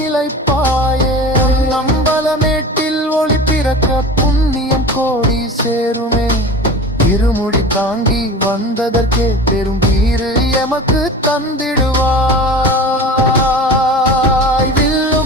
நம்பலமேட்டில் ஒளி பிறக்க புண்ணியம் கோடி சேருமே இருமுடி தாங்கி வந்ததற்கே பெரும் வீறு எமக்கு தந்திடுவாய்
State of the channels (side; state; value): both; normal; correlation 0.35